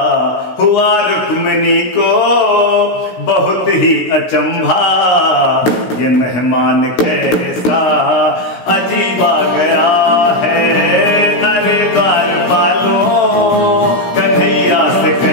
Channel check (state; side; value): late; right; 16 ms